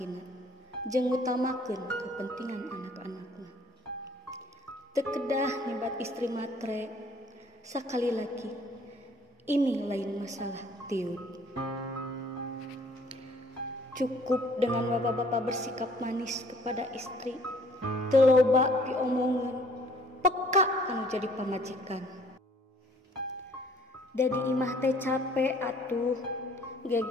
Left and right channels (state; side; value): normal; both; correlation 0.58